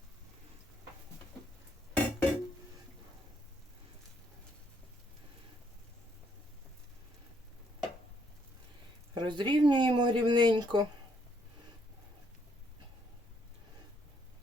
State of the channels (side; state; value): both; normal; correlation 0.70